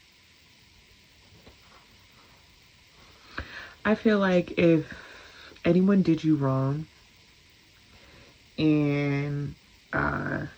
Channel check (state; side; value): identical; both; correlation 1.00